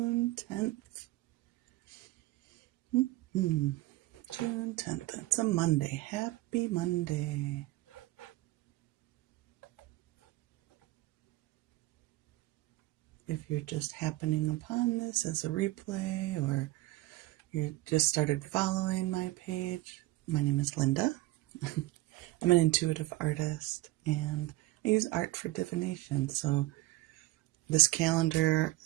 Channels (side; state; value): left; quieter; 18.3 dB